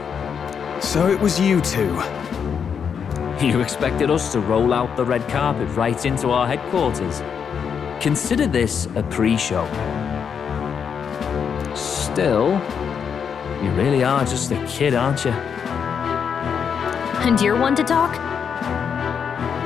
So it was you two. You expected us to roll out the red carpet right into our headquarters. Consider this a pre-show. Still, you really are just a kid, aren't you? And you're one to talk?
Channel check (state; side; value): quieter; right; 7.1 dB